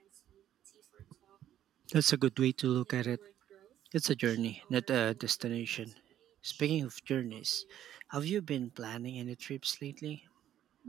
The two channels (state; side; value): quieter; left; 11.5 dB